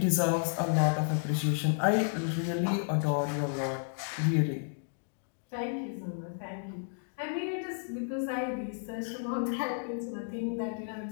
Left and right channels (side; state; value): right; silent; digital silence